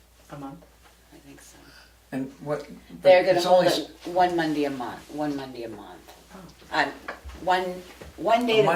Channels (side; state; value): both; identical; correlation 1.00